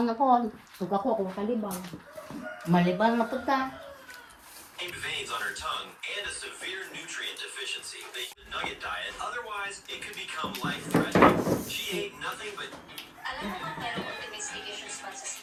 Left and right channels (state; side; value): identical; both; correlation 1.00